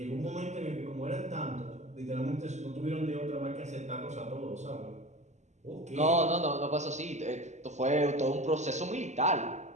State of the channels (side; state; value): left; late; 0.33 ms